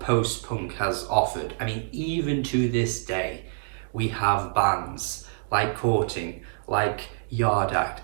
post-punk has offered. I mean, even to this day, we have bands like Courting, like Yard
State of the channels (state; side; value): silent; left; digital silence